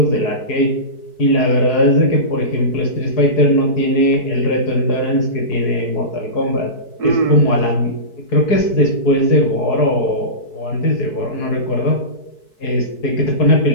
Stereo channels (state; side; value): late; right; 4.6 ms